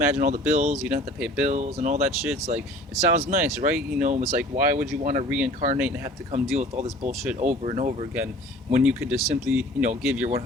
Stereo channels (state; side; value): normal; both; correlation 0.47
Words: all the bills, you don't have to pay bills and all that shit. It's like, it sounds nice, right? It's like, why would you want to reincarnate and have to come deal with all this bullshit over and over again, when you could just simply give your